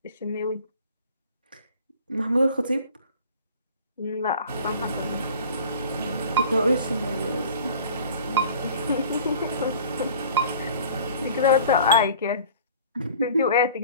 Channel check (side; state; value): both; inverted; correlation -0.46